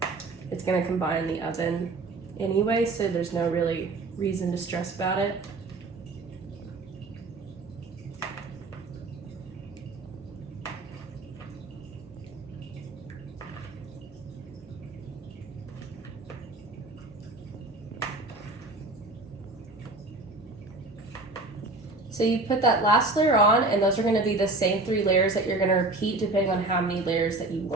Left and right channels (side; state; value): left; quieter; 3.2 dB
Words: it's gonna combine in the oven anyway, so there's no really reason to stress about it. So you put that last layer on, and those are gonna be the same 3 layers that you're gonna repeat depending on how many layers that you